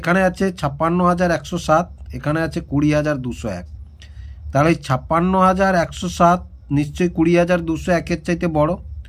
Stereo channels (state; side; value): identical; both; correlation 1.00